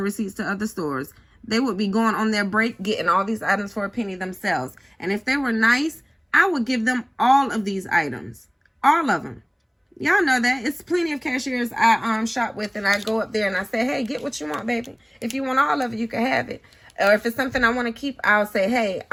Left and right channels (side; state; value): both; identical; correlation 1.00